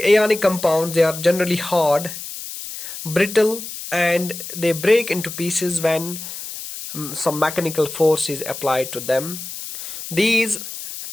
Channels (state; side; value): noise; left; hiss, 10 dB below the sound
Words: ionic compounds, they are generally hard, brittle, and they break into pieces when some mechanical force is applied to them. These